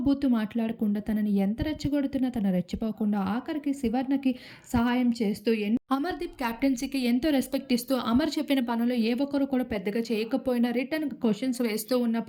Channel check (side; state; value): both; identical; correlation 1.00